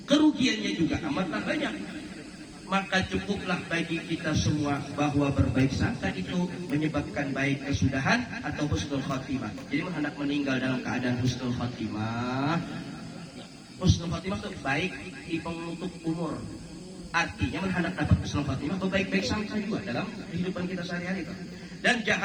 kerugiannya juga amatlah banyak. Maka cukuplah bagi kita semua bahwa berbaik sangka itu menyebabkan baik kesudahan atau husnul khatimah. Jadi hendak meninggal dalam keadaan husnul khatimah. Husnul khatimah itu baik di penutup umur. Artinya hendak dapat husnul khatimah berbaik-baik sangka juga dalam kehidupan kita sehari-hari. Dan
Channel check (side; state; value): both; identical; correlation 1.00